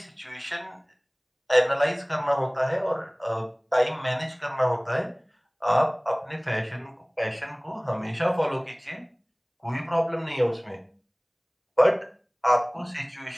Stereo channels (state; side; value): identical; both; correlation 1.00